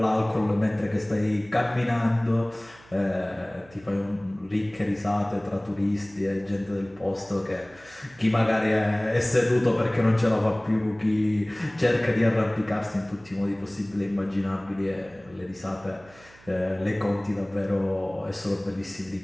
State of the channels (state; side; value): noise; right; hum, 25 dB below the sound